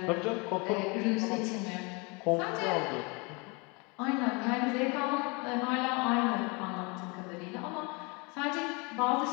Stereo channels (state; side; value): quieter; right; 29.6 dB